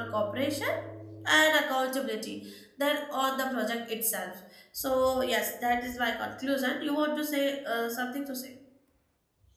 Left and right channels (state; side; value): identical; both; correlation 1.00